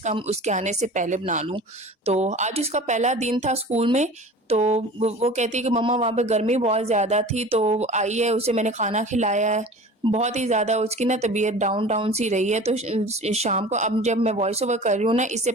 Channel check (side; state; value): both; normal; correlation 0.39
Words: कम उसके आने से पहले बना लूँ। तो आज उसका पहला दिन था स्कूल में, तो वो कहती है कि मम्मा वहाँ पे गर्मी बहुत ज़्यादा थी, तो आई है, उसे मैंने खाना खिलाया है। बहुत ही ज़्यादा उसकी ना तबीयत डाउन-डाउन सी रही है, तो शाम को अब जब मैं वॉइस ओवर कर रही हूँ ना, इससे